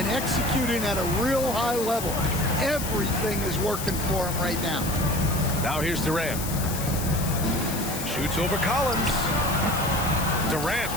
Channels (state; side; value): noise; left; hiss, 7 dB below the sound